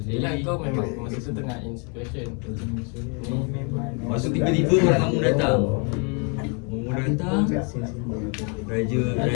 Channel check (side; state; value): right; quieter; 35.5 dB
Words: Yelah kau memang masa tu tengah in situation. Lepas tu tiba-tiba orang kampung datang. Orang datang, raja